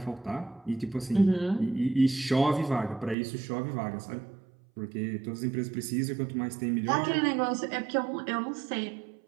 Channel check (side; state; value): left; drops out; at 3.2 s